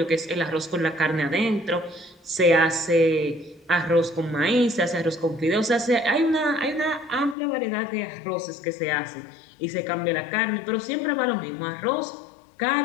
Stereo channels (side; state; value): right; drops out; at 7.4 s